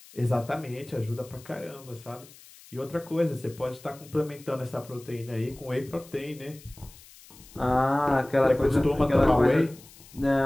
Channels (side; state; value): left; noise; hiss, 22 dB below the sound